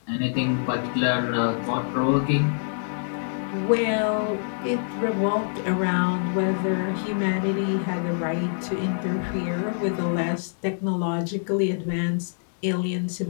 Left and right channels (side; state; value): right; silent; digital silence